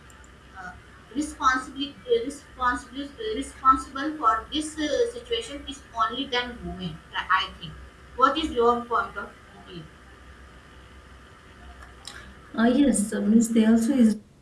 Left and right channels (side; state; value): both; identical; correlation 1.00